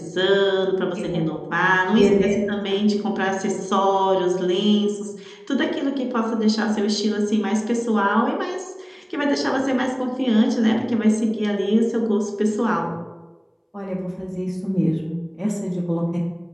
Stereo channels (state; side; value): identical; both; correlation 1.00